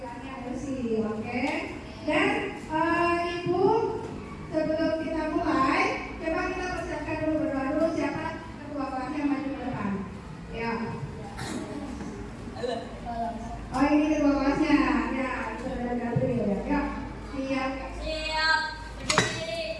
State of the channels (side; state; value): both; identical; correlation 1.00